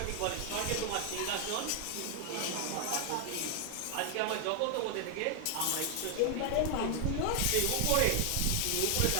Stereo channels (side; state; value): both; different; correlation 0.00